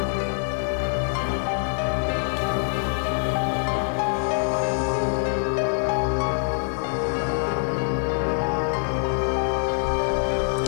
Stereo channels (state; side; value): silent; right; digital silence